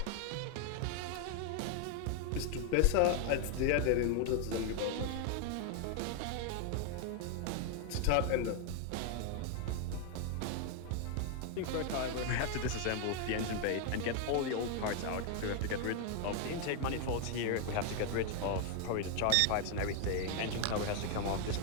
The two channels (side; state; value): both; different; correlation 0.00